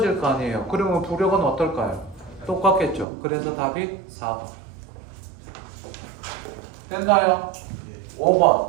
거 아니에요. 그러면 부력은 어떨까요? 똑같겠죠. 그래서 답이 4번. 됐나요?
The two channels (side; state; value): left; drops out; at 3.1 s